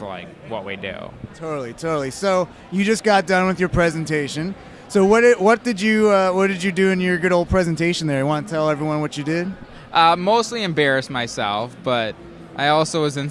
like what we do. Totally. So you just got done with your presentation. So what did you do in your good old presentation there? You want to tell everyone what you did? Mostly embarrass myself, but I also was in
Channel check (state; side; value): identical; both; correlation 1.00